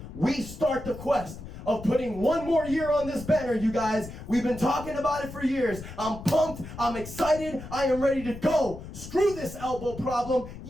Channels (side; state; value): left; noise; rumble, 12 dB below the sound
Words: we start the quest of putting 1 more year on this banner, you guys. We've been talking about it for years. I'm pumped. I'm excited. I am ready to go. Screw this elbow problem.